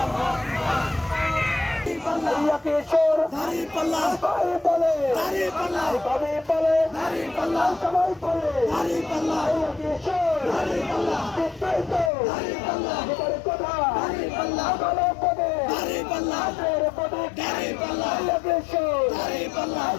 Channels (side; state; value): right; drops out; at 12.1 s